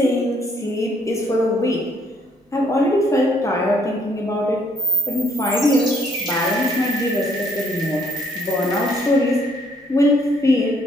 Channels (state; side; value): normal; both; correlation 0.68